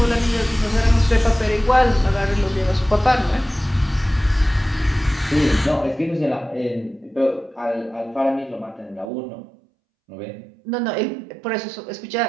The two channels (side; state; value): left; drops out; at 9.1 s